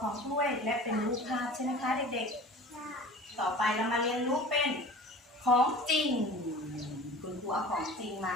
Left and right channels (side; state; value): both; normal; correlation 0.40